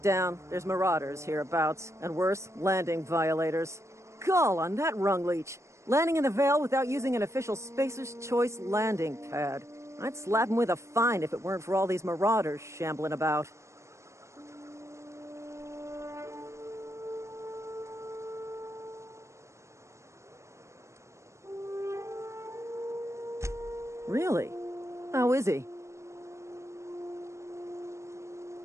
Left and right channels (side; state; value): left; late; 0.14 ms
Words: down. There's marauders hereabouts, and worse, landing violators. Gall on that rung leech. Landing in the Vale without using an official Spacer's Choice landing pad. I'd slap him with a fine if it weren't for all these marauders shambling about. Really? How is he?